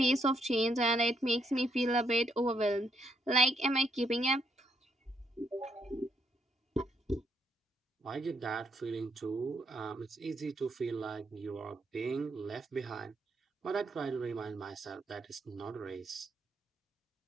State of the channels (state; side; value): normal; both; correlation 0.75